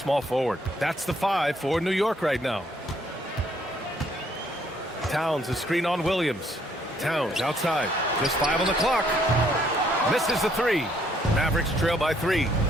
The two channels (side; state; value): both; normal; correlation 0.67